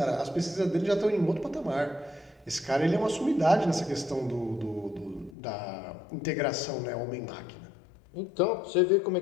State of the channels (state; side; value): drops out; right; at 5.4 s